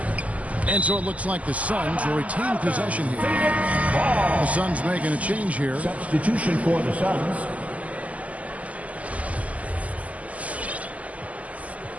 And so it looks like the Suns will retain possession here. The Suns making a change here. Substitution for the Suns.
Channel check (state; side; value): late; left; 0.071 ms